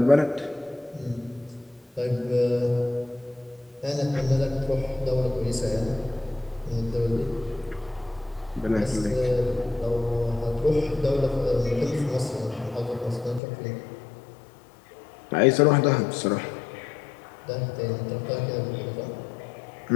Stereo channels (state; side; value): drops out; right; at 13.4 s